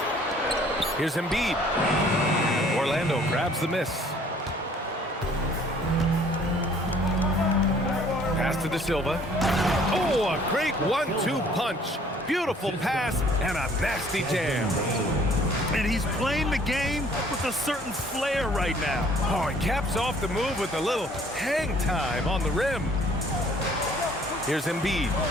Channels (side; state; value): both; normal; correlation 0.57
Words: Here's Embiid. Orlando grabs the miss. Pass to De Silva. Oh, a great 1-2 punch. Beautiful pass and a nasty jam. And he's playing the game with a certain flair right now. Oh, he caps off the move with a little hang time on the rim. Here's Embiid.